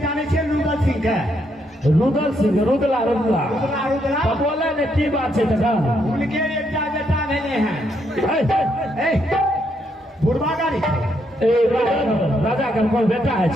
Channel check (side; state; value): both; normal; correlation 0.76